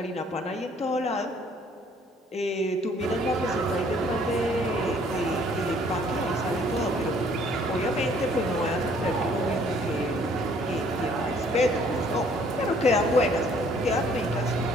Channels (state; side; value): normal; both; correlation 0.60